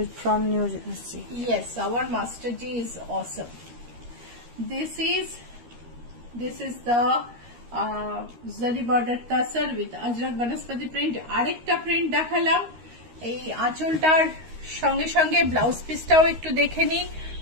from New Jersey. Yes, our Master G is awesome. This is the Zari border tasar with Ajrak Banaspati print. আরেকটা print দেখালাম। এই আঁচলটার সঙ্গে সঙ্গে blouse পিসটাও একটু দেখে নিই।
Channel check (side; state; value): left; late; 13 ms